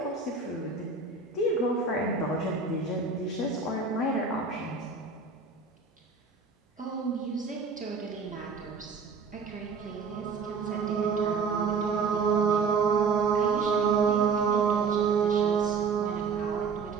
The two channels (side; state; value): left; quieter; 5.0 dB